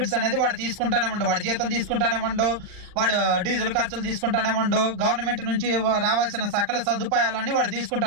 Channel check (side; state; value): left; late; 39 ms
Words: అనేది వాడు తీసుకుంటానే ఉండు. వాడు జీతం తీసుకుంటానే ఉండు, వాడు డీజిల్ ఖర్చులు తీసుకుంటానే ఉండు, గవర్నమెంట్ నుంచి రావాల్సిన సకల సదుపాయాలన్నీ వాడు